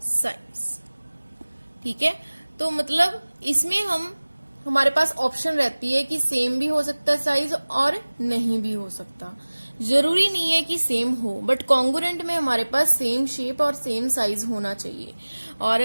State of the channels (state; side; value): inverted; both; correlation -1.00